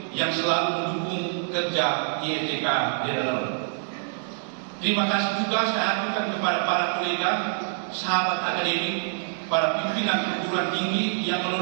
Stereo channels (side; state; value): left; silent; digital silence